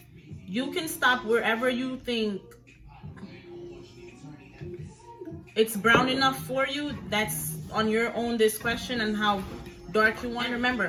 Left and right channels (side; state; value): both; identical; correlation 1.00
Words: You can stop wherever you think it's brown enough for you. That's on your own discretion and how dark you want.